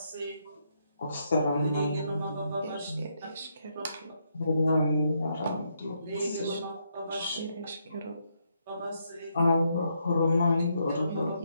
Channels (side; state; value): both; inverted; correlation -0.77